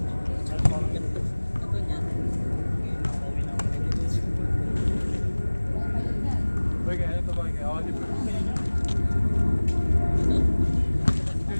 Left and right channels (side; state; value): both; inverted; correlation -1.00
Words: Boy, kaya ito boy. Kaya ako di pa.